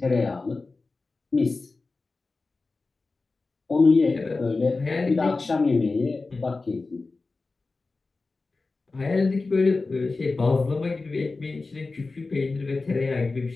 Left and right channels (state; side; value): quieter; right; 3.7 dB